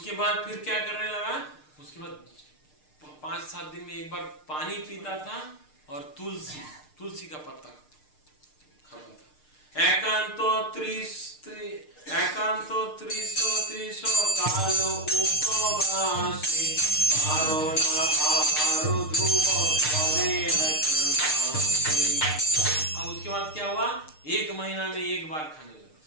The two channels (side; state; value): right; late; 6.6 ms